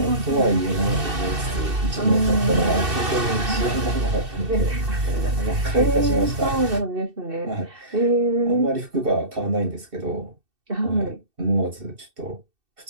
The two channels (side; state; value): left; late; 2.7 ms